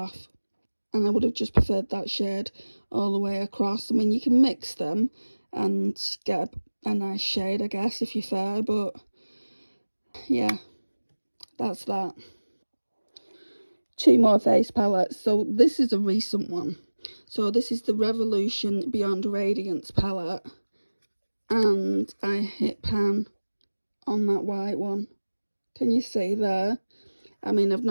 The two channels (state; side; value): inverted; both; correlation -1.00